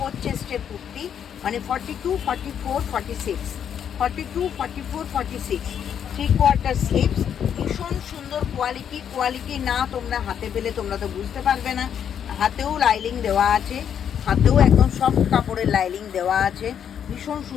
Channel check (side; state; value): right; quieter; 8.5 dB